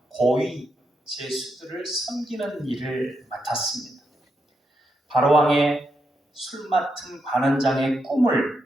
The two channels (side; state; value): both; normal; correlation 0.82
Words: 고위 제수들을 섬기는 일을 맡았습니다. 바로왕의 술 맡은 관원장의